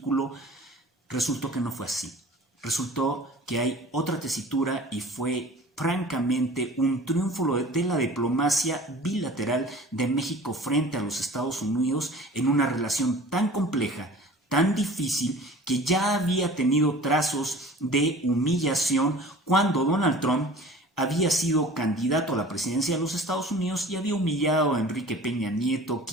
resultó que no fue así. Resultó que hay otra tesitura y fue francamente un triunfo de la diplomacia bilateral de México frente a los Estados Unidos en una relación tan compleja, tan difícil, que ya había tenido trazos de humillación cuando Donald Trump había sido candidato a la presidencia de los Estados Unidos y había humillado a Enrique Peña Nieto,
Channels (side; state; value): both; normal; correlation 0.43